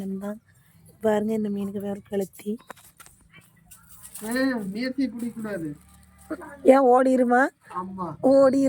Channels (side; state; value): both; identical; correlation 1.00